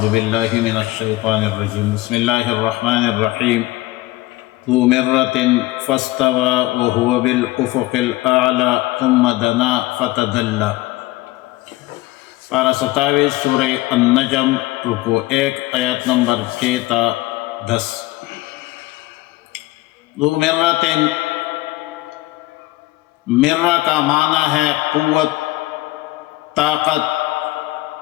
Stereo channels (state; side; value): quieter; right; 18.6 dB